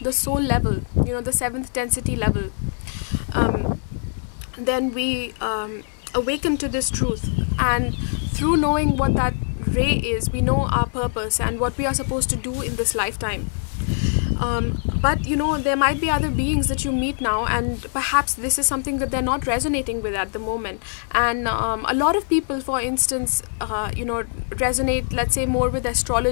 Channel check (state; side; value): silent; right; 64 dB below the other